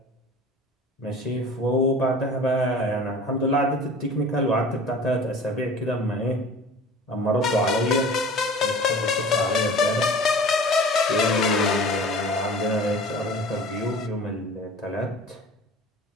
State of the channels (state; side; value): normal; both; correlation 0.41